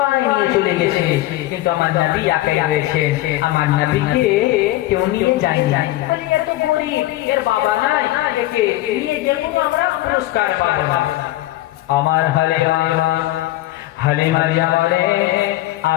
নিয়ে চলে গেছে, কিন্তু আমার নবী একাই রয়েছে। আমার নবীকে কেউ নিয়ে যায়নি। এত গরিব, এর বাবা নাই, একে নিয়ে গেলে আমরা পুরস্কার পাবো না। আমার হালিমা জামালে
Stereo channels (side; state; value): right; quieter; 16.3 dB